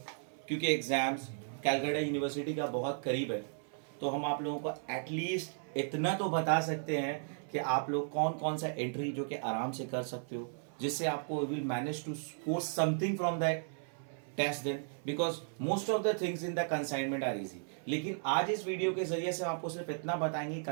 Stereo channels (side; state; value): left; silent; 54 dB below the other